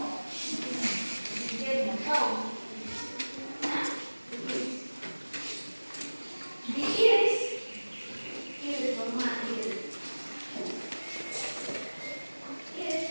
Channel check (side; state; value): both; inverted; correlation -1.00